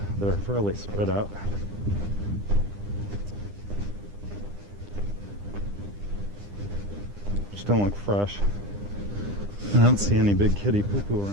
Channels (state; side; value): late; left; 9.9 ms